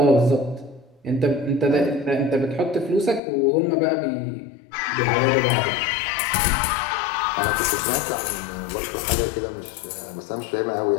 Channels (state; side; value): drops out; right; at 3.2 s